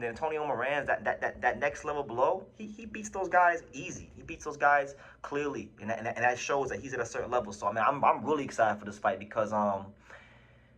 the Antonio Morans, that next level below, he beats those guys easy. He beats those guys clearly, and that shows that he's at a certain level. So, I'm really excited for this fight because,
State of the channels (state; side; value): identical; both; correlation 1.00